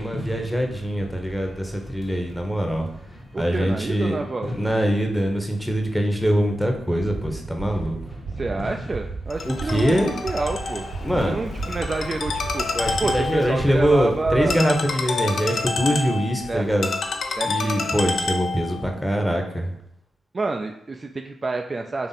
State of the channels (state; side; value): normal; both; correlation 0.91